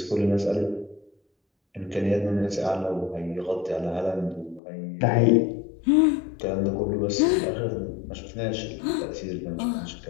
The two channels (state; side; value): drops out; right; at 4.6 s